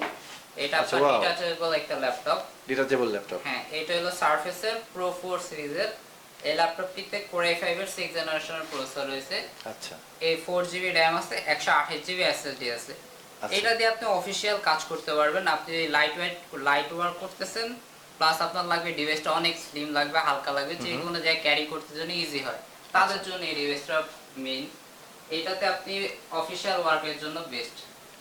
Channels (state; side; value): identical; both; correlation 1.00